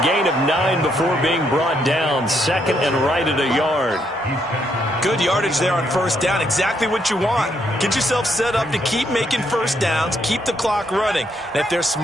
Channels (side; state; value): both; normal; correlation 0.75